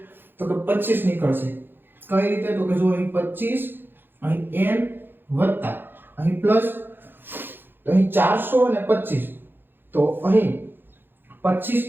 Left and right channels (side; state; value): left; late; 0.099 ms